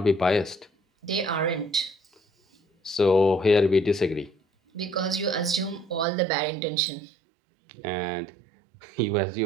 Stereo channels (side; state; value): left; drops out; at 6.1 s